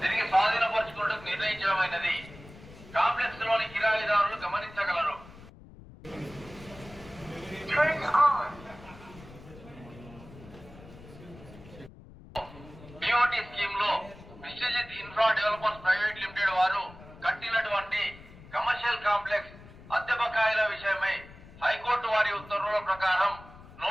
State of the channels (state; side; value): noise; left; rumble, 19 dB below the sound